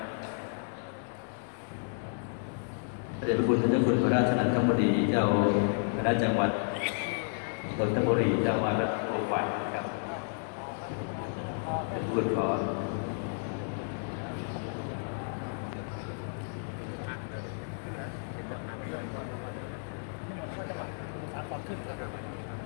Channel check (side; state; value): right; silent; digital silence